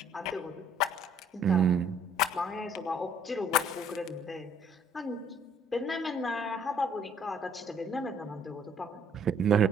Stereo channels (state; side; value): normal; both; correlation 0.61